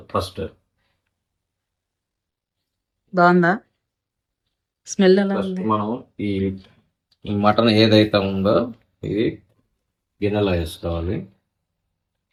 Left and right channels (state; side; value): identical; both; correlation 1.00